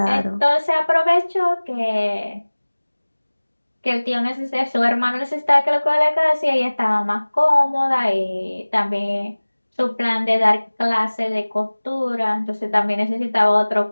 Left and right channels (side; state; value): both; inverted; correlation -1.00